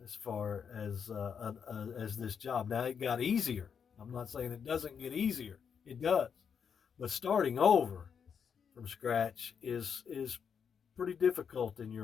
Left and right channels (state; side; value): quieter; right; 7.0 dB